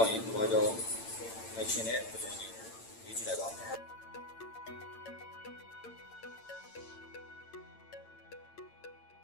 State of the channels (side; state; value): right; late; 8.9 ms